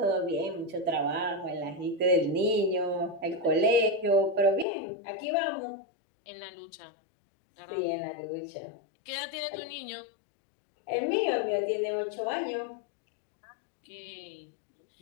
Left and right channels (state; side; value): drops out; right; at 4.7 s